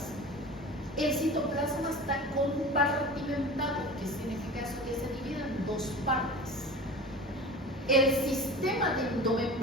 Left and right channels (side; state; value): both; normal; correlation 0.35